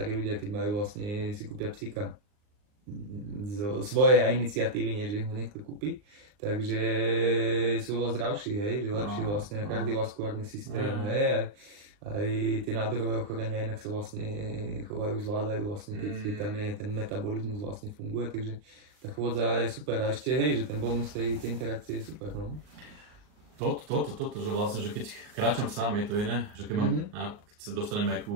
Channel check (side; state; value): left; late; 39 ms